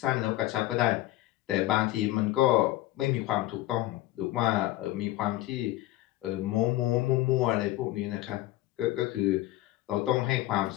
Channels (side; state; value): right; quieter; 16.4 dB